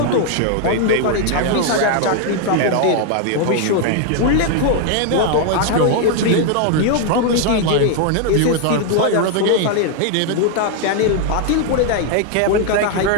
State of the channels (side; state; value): both; different; correlation 0.00